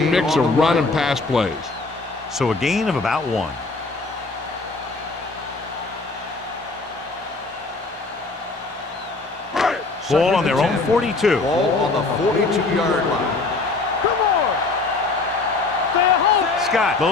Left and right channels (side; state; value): right; quieter; 3.6 dB